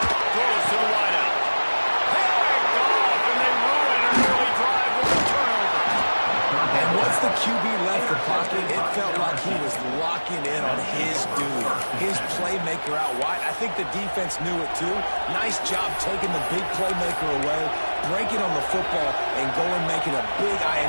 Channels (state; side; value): inverted; both; correlation -1.00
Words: Throws to the wideout. Picked off, and they ruin an early drive with a turnover. And once the QB left the pocket, it felt like he was locking in on his dude, his playmaker out wide. I think the defense knew it too. Nice job taking the big playmaker away, breaking on the football, and going making a big